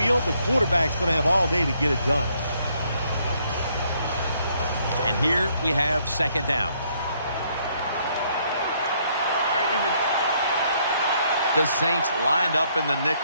the quarterback's going to have all day to get it done. And here we have second down. The Saints lined up in the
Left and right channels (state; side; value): inverted; both; correlation -0.69